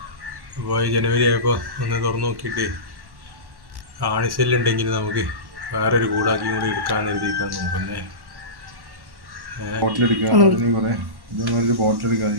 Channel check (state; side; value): late; left; 1.1 ms